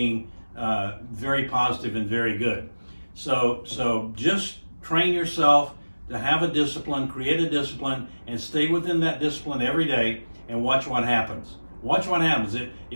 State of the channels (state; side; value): inverted; both; correlation -1.00